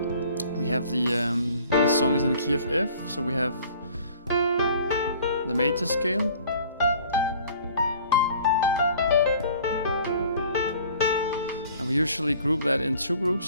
We have the song is in the key of F, so we have the major scale. And we usually group that in 2 groups,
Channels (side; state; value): both; inverted; correlation -0.51